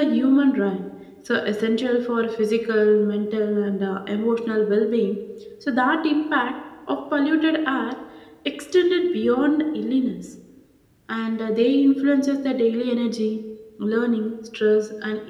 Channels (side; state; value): both; identical; correlation 1.00